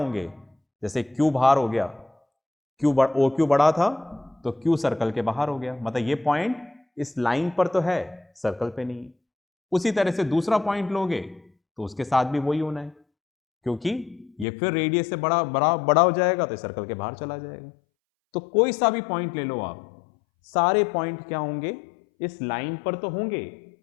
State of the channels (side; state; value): right; drops out; at 14.5 s